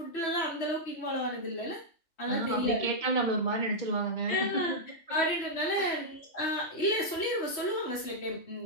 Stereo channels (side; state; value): right; late; 3.1 ms